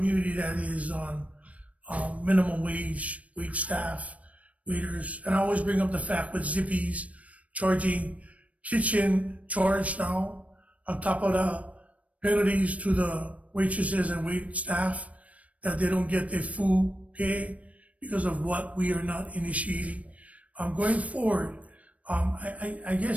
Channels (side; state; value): left; late; 0.066 ms